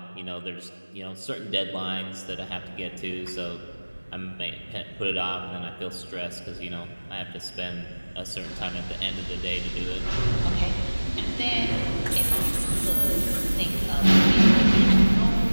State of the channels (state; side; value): inverted; both; correlation -1.00